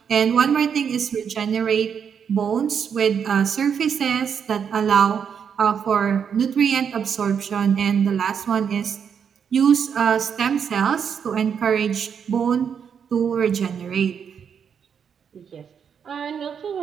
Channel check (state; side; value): quieter; left; 7.3 dB